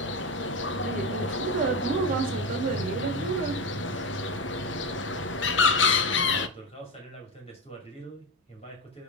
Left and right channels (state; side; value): normal; both; correlation 0.15